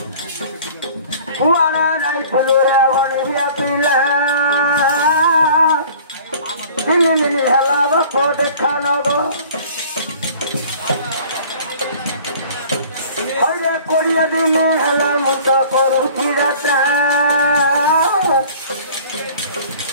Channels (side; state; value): both; inverted; correlation -0.48